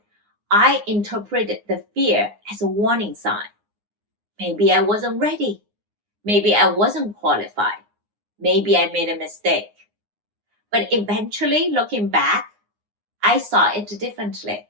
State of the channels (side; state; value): left; late; 9.7 ms